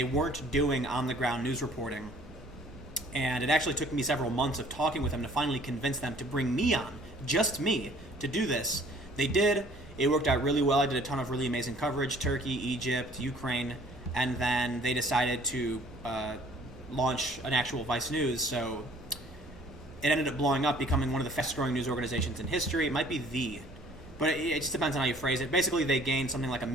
weren't doing on-the-ground news reporting, and it actually took me several months of talking with them to finally convince them to bring me on, just me, to do this. They did. It worked out really well. I did a ton of really amazing coverage: Turkey, Egypt, Ukraine, and then they decided to launch an actual Vice News, so it ended up blowing up, becoming one of the fastest-growing news organizations in history. It might be but it just depends on how you phrase it. Basically, they gained something like 1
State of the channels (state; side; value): normal; both; correlation 0.55